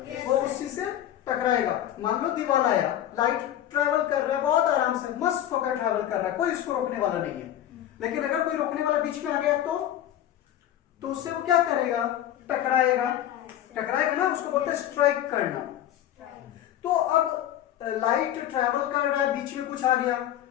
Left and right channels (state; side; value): quieter; right; 11.7 dB